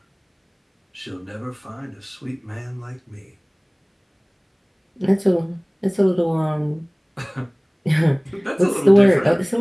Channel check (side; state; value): both; identical; correlation 1.00